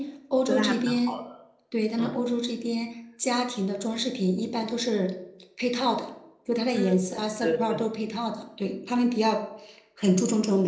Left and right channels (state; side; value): identical; both; correlation 1.00